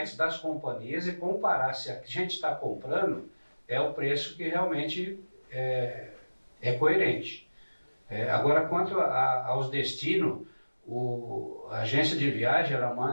das companhias e comparar se a gente está comprando é o preço que realmente é coerente. Agora, quanto aos destinos, a agência de viagem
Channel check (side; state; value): both; inverted; correlation -1.00